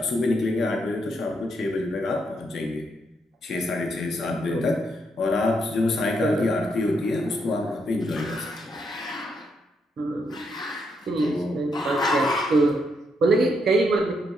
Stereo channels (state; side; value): normal; both; correlation 0.78